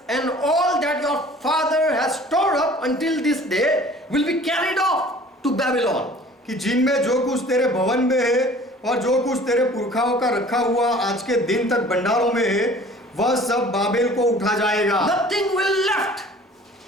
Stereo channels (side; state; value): both; normal; correlation 0.48